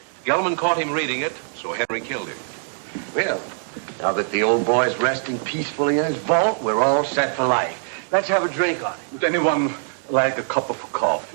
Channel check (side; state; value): left; silent; digital silence